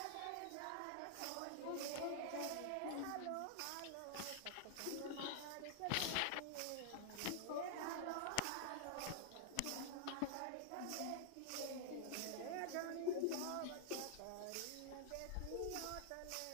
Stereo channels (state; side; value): different; both; correlation -0.01